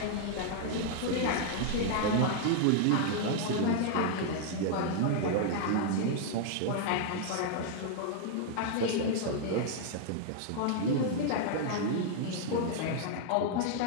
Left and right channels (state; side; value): different; both; correlation 0.00